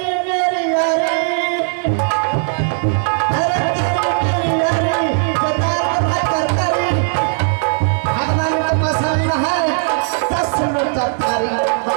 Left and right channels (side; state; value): left; silent; 68 dB below the other